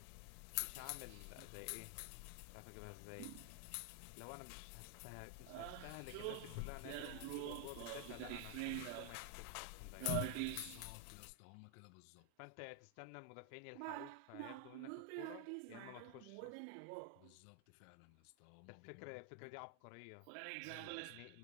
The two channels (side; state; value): both; different; correlation 0.00